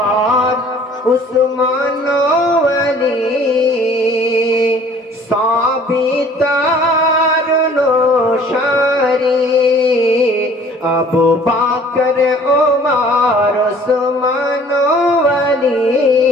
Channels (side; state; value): both; normal; correlation 0.53